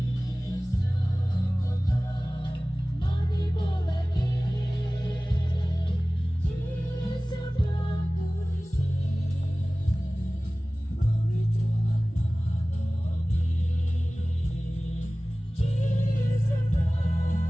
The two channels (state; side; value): normal; both; correlation 0.98